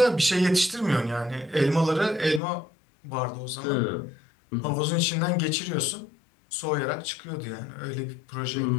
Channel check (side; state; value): right; drops out; at 2.4 s